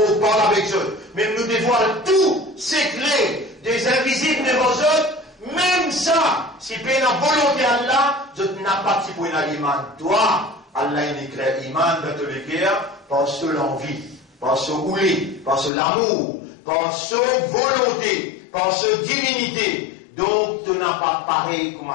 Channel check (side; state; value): right; drops out; at 15.7 s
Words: parle avec eux, même nous dévoilons tous ces clés des invisibles devant eux, même ça, si tu as la volonté d'Allah, je n'ai pas de pour l'iman. Toi, Allah il éclaire l'iman dans tous les guerres, par ce l'envie, par ce ouli, par ce l'amour, par ce volonté, par ce divinité, donc tu n'as pas pareil comme